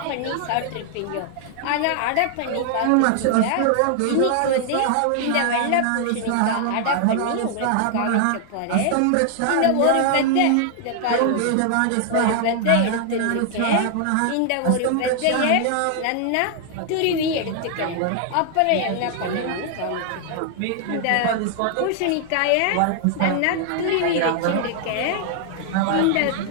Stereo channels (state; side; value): different; both; correlation 0.00